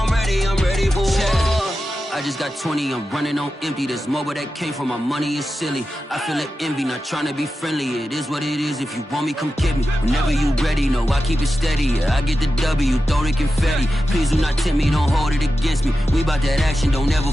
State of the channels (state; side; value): normal; both; correlation 0.91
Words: ready for war. I just got 20, I'm running on empty. This mobile that came from my money is silly. I feel it envy, not trying to be friendly. It is what it is, if you want me, come get me. Whenever you ready, no, I keep it steady. Yeah, I get the W, throw the confetti. Please do not tempt me, don't hold it against me. We bout that action, don't ever